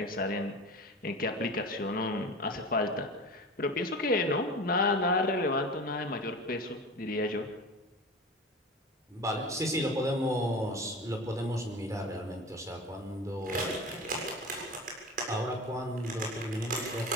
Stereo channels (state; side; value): normal; both; correlation 0.32